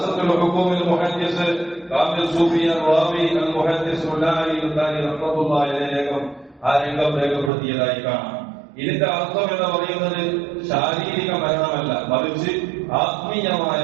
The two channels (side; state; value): left; drops out; at 7.5 s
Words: ഹുക്കൂമിൽ മുഹദ്ദിസ് കാമിൽ സൂഫി റാവി അൽ മുഹദ്ദിസ് ഉല്ലാഹി റഹ്മത്തുള്ളാഹി അലൈഹി ആ രംഗം രേഖപ്പെടുത്തിയതായി കാണാം. ഇതിന്റെ അർത്ഥം എന്ന് പറയുന്നത് ശാരീരിക മരണമല്ല, മറിച്ച് ആത്മീയമായ